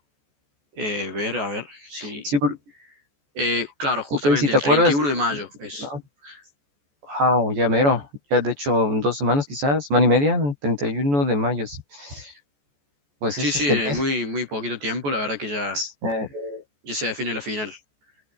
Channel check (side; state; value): left; late; 14 ms